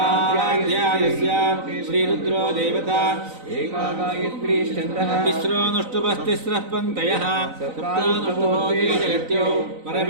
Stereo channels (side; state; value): left; late; 3.9 ms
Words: श्रीरुद्रो देवता एकागायत्रीश्चन्द्रः तिस्रोऽनुष्टुपस्तिस्रः पङ्क्तयः सप्तानुष्टुभोगे जगत्यो